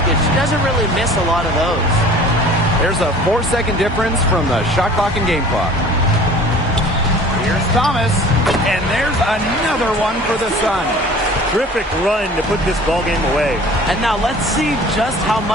she doesn't really miss a lot of those. There's a 4-second difference from the shot clock and game clock. Here's Thomas, and there's another one for the Sun. Terrific run to put this ball game away. And now let's see just how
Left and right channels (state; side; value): normal; both; correlation 0.46